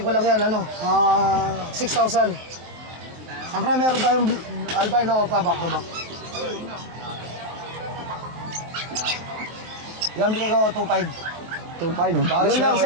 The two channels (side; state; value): left; late; 23 ms